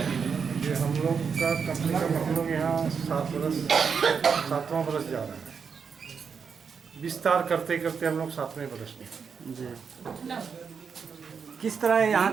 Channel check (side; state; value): left; quieter; 6.2 dB